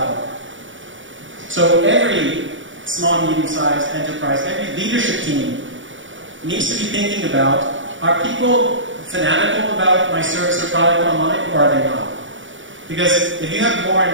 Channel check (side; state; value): left; late; 0.56 ms